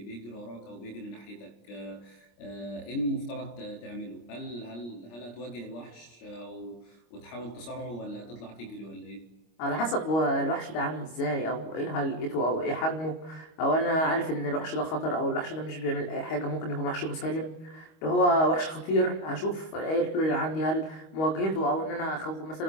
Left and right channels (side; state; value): right; late; 25 ms